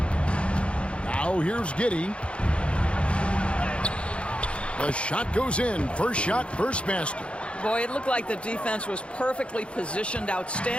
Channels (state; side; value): late; right; 0.059 ms